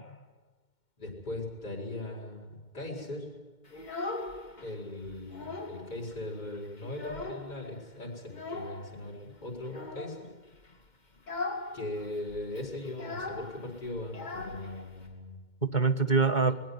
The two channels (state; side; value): late; right; 2.2 ms